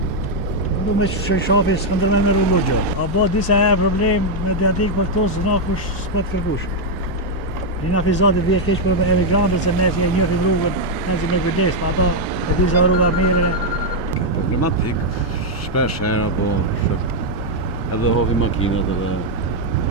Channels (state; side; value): normal; both; correlation 0.00